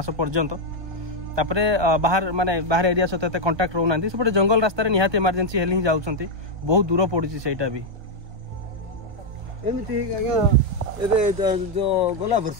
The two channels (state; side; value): late; left; 1.2 ms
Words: पर्यंत तापरे बाहर माने बाहर एरिया सहित कंटाक्ट रोना सेपटे जंगल रास्ता निहाती इमरजेंसी हेले ही जाऊँ बहुत दूर पड़ी से भी एमती जो गला वर्ष